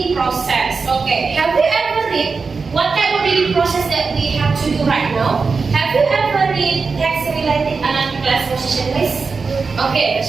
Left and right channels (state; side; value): quieter; left; 4.7 dB